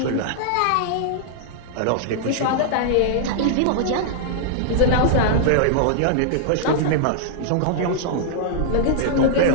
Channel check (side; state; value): both; different; correlation -0.01